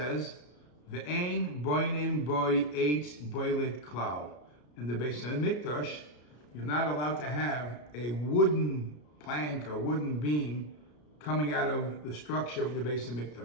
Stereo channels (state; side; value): late; right; 33 ms